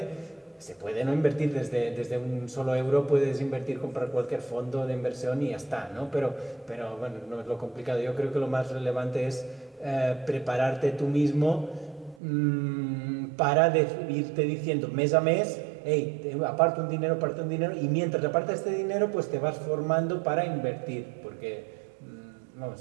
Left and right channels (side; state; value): left; drops out; at 12.2 s